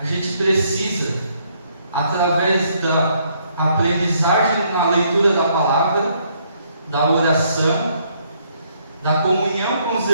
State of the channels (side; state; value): both; inverted; correlation -0.70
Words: gente precisa, através da aprendizagem na leitura da palavra, da oração, da comunhão com os